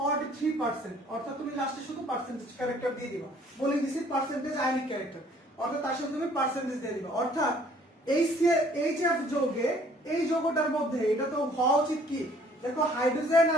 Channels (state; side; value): normal; both; correlation 0.58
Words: অর্থাৎ তুমি লাস্টে শুধু পার্সেন্টেজ ক্যারেক্টার দিয়ে দিবা। বলে দিছি পার্সেন্টেজ আয়নিক ক্যারেক্টার, অর্থাৎ তার সাথে তুমি পার্সেন্টেজ দিয়ে দিবা। অর্থাৎ HF যৌগে, এই যৌগটার মধ্যে এটা তো হওয়া উচিত কি, দেখো হাইড্রোজেন